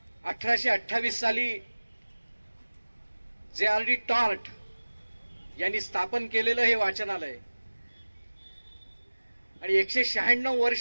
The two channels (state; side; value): inverted; both; correlation -1.00